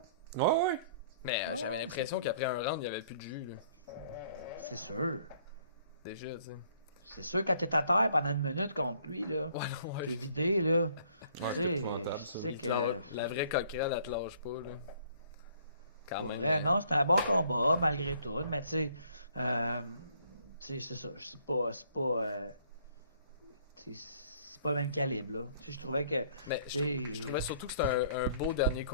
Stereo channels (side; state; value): both; inverted; correlation -0.61